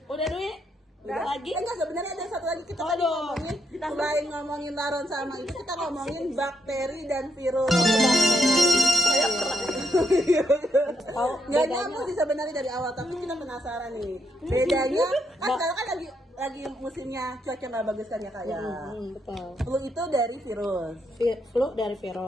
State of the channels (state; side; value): normal; both; correlation 0.78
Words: Udah Dwi? Udah lagi? Enggak, sebenarnya ada satu lagi kita tadi Aduh. ngomongin, selain ngomongin laron sama itu kita ngomongin bakteri dan virus. Saya pernah Tahu Nggak bedanya? nyambung sih sebenarnya dari awal, tapi kita penasaran nih. Bedanya kan sekarang kan lagi musimnya cuaca nggak bagus kan ya kayak. Betul. Flu itu dari virus. Flu dari